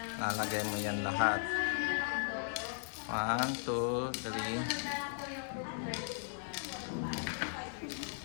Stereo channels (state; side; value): silent; right; 53 dB below the other